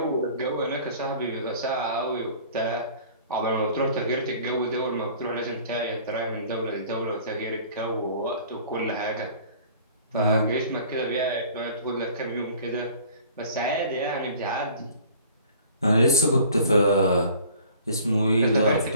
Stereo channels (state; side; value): inverted; both; correlation -0.49